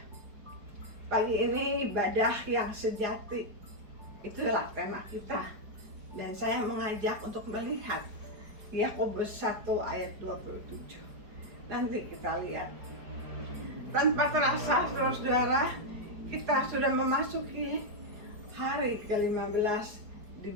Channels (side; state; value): left; late; 4.8 ms